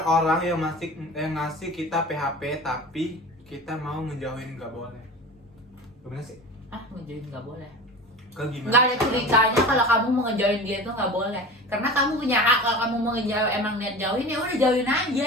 orang yang ngasih kita PHP tapi kita mau ngejauhin nggak boleh? Gimana sih? Ngejauhin nggak boleh. Kak gimana? Nggak ada ceritanya kalau kamu mau ngejauhin dia itu nggak boleh. Karena kamu punya hak kalau kamu mau ngejauhin, emang niat jauhin ya udah jauhin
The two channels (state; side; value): normal; both; correlation 0.35